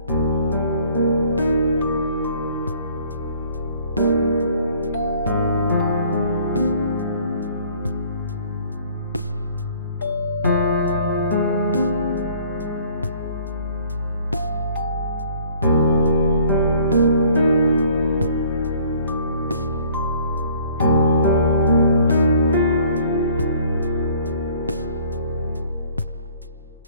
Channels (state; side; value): inverted; both; correlation -0.56